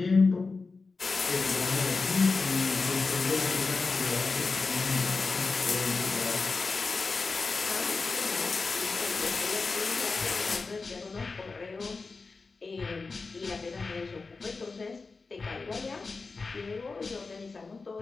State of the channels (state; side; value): quieter; right; 4.1 dB